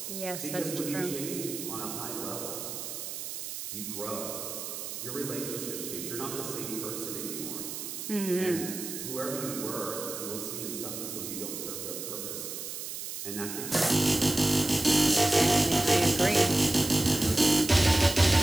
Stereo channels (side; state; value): right; noise; hiss, 7 dB below the sound